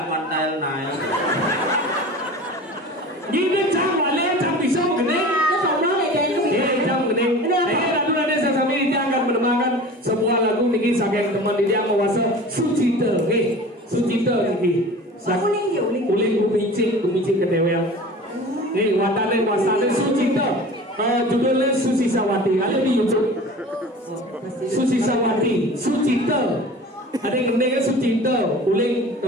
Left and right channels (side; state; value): both; normal; correlation 0.39